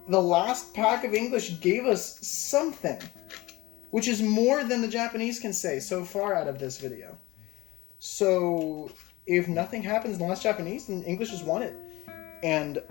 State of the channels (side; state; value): right; quieter; 20.0 dB